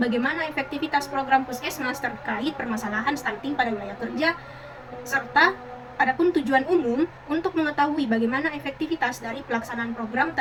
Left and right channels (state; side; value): identical; both; correlation 1.00